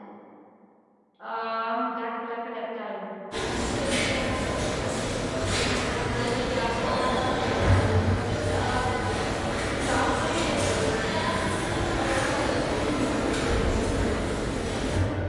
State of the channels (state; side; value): identical; both; correlation 1.00